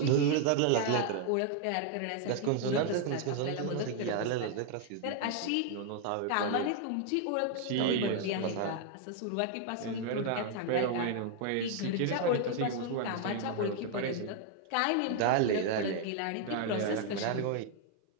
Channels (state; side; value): different; both; correlation 0.00